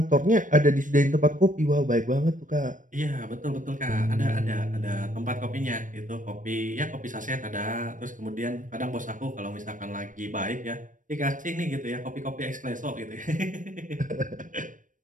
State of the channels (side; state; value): left; late; 0.38 ms